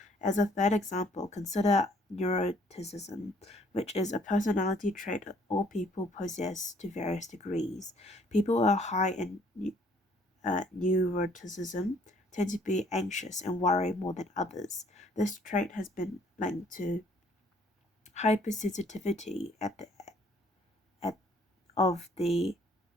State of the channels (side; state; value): both; normal; correlation 0.61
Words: As a third example, consider neuroticism, which is a personality trait all people possess to various degrees. People who are high in neuroticism tend to be anxious and worry more than others. This trait has been linked to hypersensitivity of the